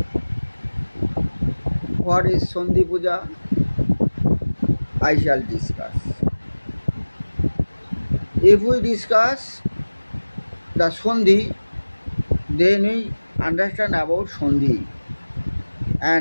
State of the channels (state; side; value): inverted; both; correlation -1.00